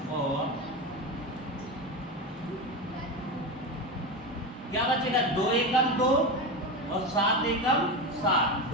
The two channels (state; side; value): normal; both; correlation 0.19